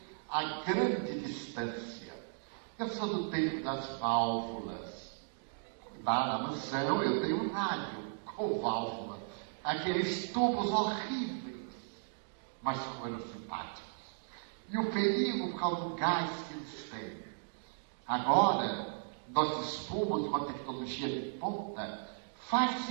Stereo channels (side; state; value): left; silent; digital silence